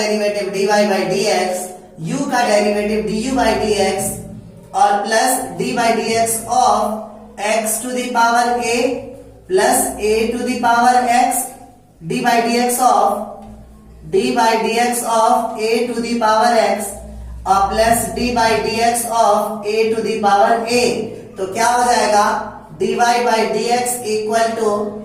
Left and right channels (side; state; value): both; identical; correlation 1.00